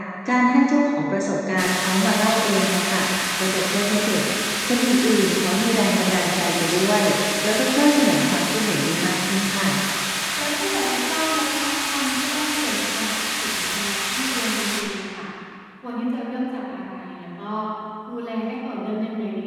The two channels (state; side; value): identical; both; correlation 1.00